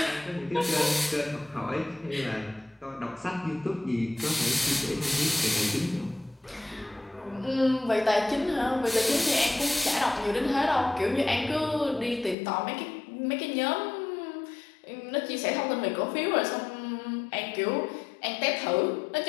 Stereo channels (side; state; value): right; drops out; at 12.4 s